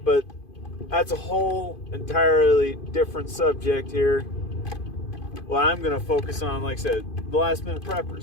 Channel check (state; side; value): late; right; 2.5 ms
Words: that's a whole entirely different subject here. What I'm going to focus on, like I said, the last minute